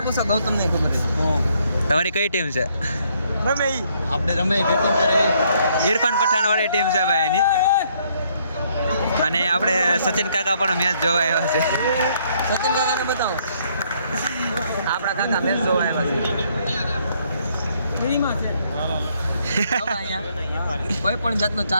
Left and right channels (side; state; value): both; inverted; correlation -0.69